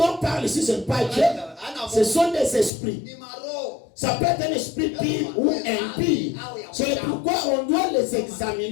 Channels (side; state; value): right; drops out; at 2.7 s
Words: parlent ici, ce n'est pas Dieu, ce sont des esprits. Ça peut être un esprit pire ou impie. C'est pourquoi on doit les